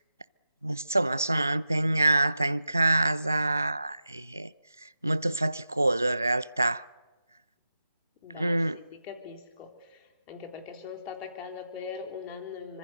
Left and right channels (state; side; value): inverted; both; correlation -0.91